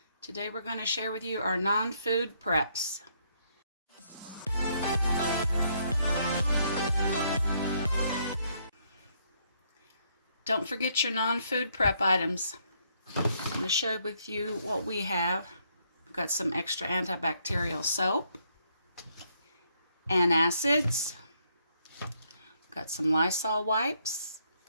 Today we're going to share with you our non-food preps. Don't forget your non-food prep items. I'm going to share with you what we have. We've got some extra antibacterial soap, antacids, got some Lysol wipes,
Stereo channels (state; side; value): inverted; both; correlation -0.72